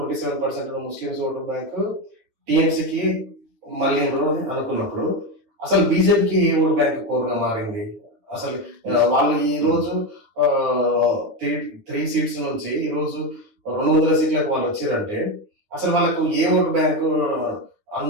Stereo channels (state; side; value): late; left; 9.8 ms